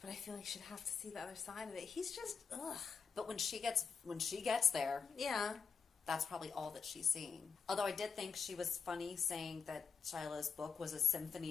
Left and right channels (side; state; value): right; quieter; 6.0 dB